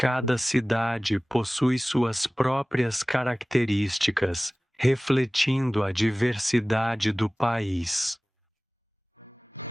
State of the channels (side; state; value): both; normal; correlation 0.98